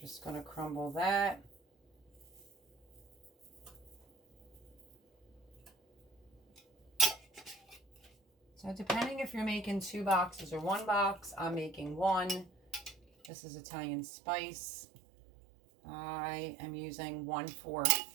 going to crumble that. So depending if you're making 2 boxes or 1 box, I'm making 1. This is Italian spice. I am using 1/4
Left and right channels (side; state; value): left; drops out; at 13.3 s